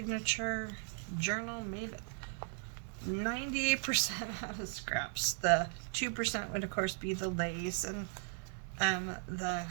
journal made 98% out of scraps. The 2% would of course be the lace and the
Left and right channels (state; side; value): silent; left; 53 dB below the other